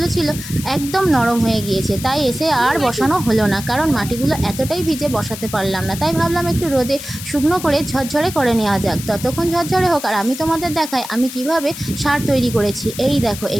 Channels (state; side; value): noise; left; hiss, 11 dB below the sound